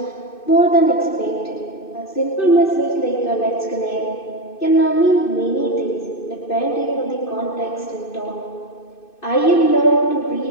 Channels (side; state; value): right; late; 2.6 ms